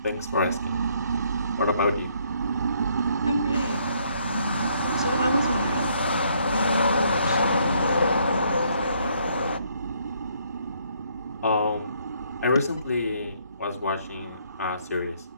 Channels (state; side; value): inverted; both; correlation -0.68